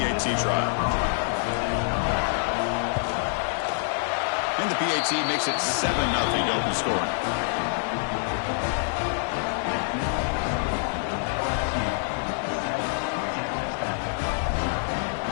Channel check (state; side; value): silent; right; digital silence